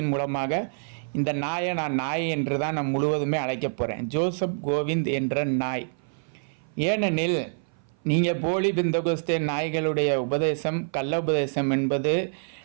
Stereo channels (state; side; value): silent; left; 57 dB below the other